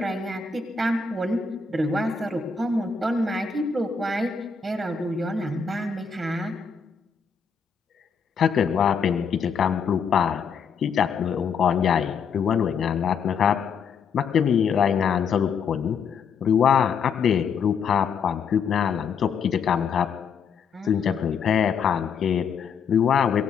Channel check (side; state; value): right; quieter; 6.1 dB